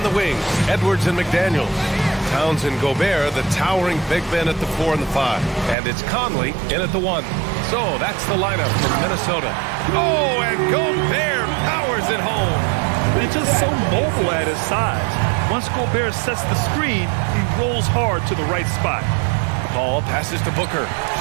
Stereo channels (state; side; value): drops out; left; at 5.8 s